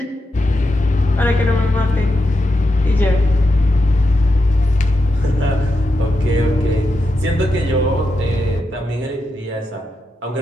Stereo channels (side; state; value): both; normal; correlation 0.86